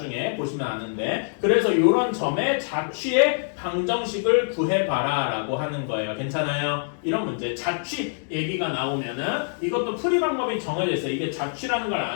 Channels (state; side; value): silent; right; digital silence